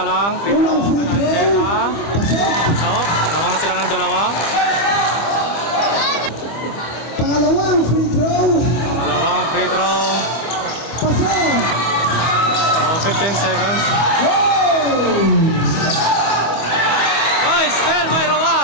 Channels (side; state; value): right; late; 25 ms